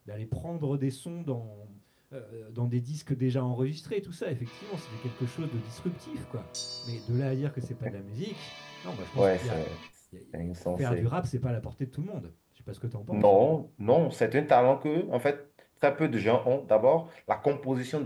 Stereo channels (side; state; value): both; identical; correlation 1.00